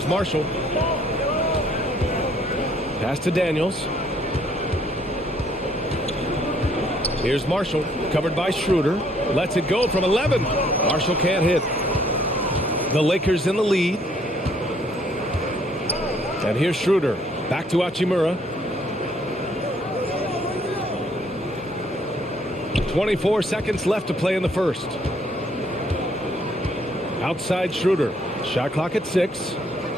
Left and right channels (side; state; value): both; normal; correlation 0.65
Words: Marshall. Pass to Daniels. Here's Marshall, covered by Schroeder. Lets it go from 11. Marshall can't hit. The Lakers in the lead. And here's Schroeder. Back to Hachimura. 24 seconds left to play in the first. Outside Schroeder. Shot clock at 6.